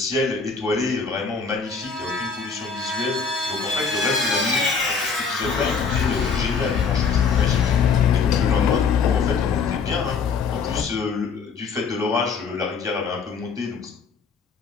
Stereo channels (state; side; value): quieter; right; 5.5 dB